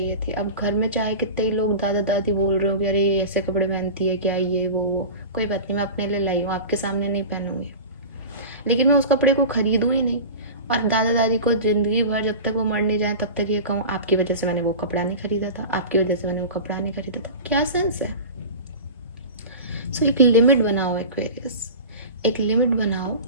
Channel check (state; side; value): inverted; both; correlation -0.31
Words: थी। अब घर में चाहे कितने ही लोग दादा दादी बोल रहे हो कि अरे ये ऐसे कपड़े पहनती है क्या, ये वो, कोई बात नहीं, मैं अपने लिए लाई हूँ, आपके सामने नहीं पहनूंगी, लेकिन मैं उस कपड़े को खरीदूँ ही नहीं। और दादा दादी को ज़िंदगी भर जब तक वो मर नहीं जाए तब तक ये कहूँ आपकी वजह से मैंने वो कपड़ा नहीं खरीदा था, आपकी वजह से मैंने वो कपड़ा नहीं खरीदा था, क्या सेंस है? सो एक लिमिट बनाओ एक्वेरियस, एक लिमिट बनाओ